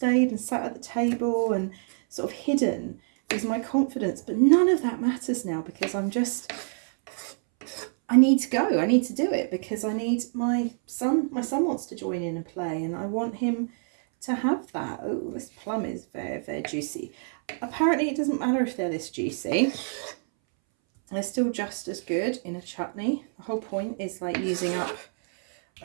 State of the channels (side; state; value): left; silent; 60 dB below the other